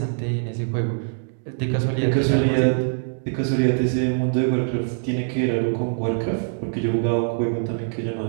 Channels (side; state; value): left; silent; digital silence